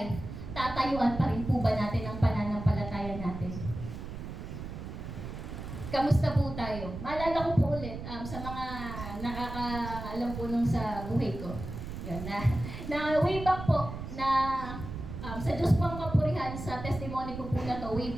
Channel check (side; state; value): right; noise; rumble, 8 dB below the sound